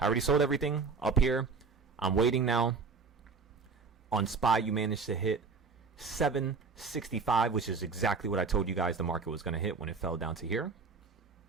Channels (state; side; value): quieter; left; 4.8 dB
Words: already sold everything up here. I'm waiting now. On SPY, you managed to hit 765, which is exactly what I told you guys the market was going to hit when it fell down to here.